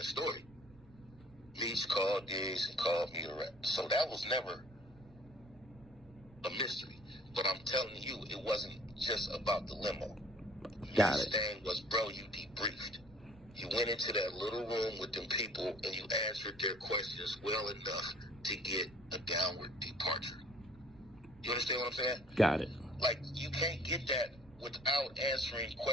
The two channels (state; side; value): noise; right; rumble, 24 dB below the sound